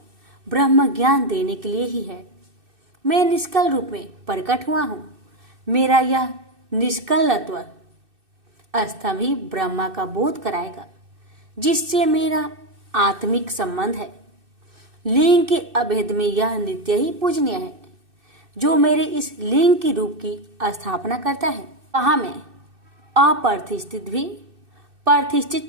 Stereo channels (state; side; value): late; left; 2.6 ms